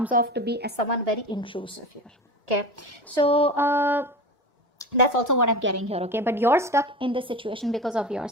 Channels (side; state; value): both; normal; correlation 0.29